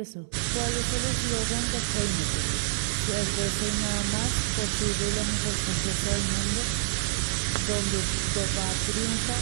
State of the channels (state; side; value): silent; left; digital silence